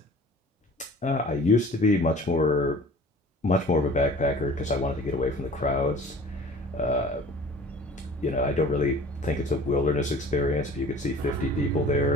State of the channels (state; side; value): normal; both; correlation 0.46